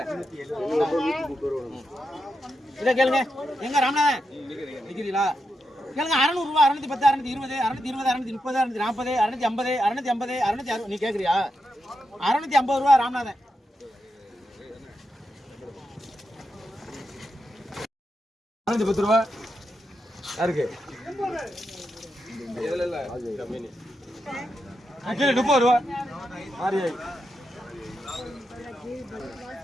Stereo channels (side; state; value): both; normal; correlation 0.86